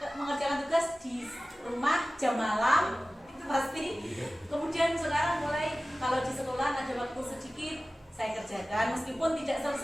mengerjakan tugas di rumah jam malam itu pasti. Kemudian sekarang mulai kalau di sekolah ada waktu sedikit saya kerjakan, meskipun tidak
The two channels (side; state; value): both; normal; correlation 0.97